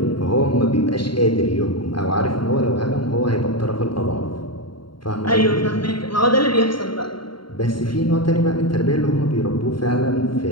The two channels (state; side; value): late; right; 0.73 ms